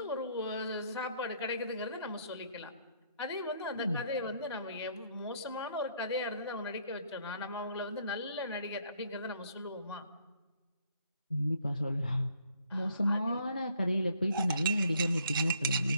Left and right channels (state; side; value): inverted; both; correlation -0.67